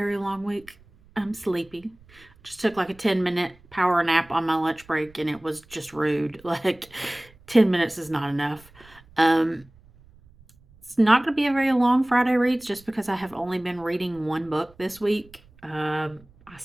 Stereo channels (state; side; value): noise; right; rumble, 27 dB below the sound